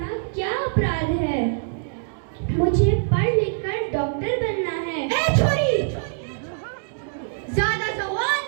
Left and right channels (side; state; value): left; silent; digital silence